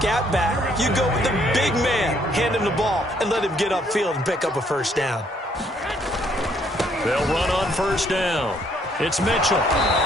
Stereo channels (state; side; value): normal; both; correlation 0.67